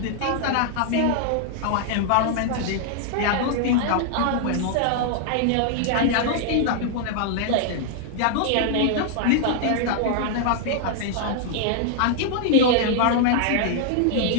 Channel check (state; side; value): different; both; correlation 0.00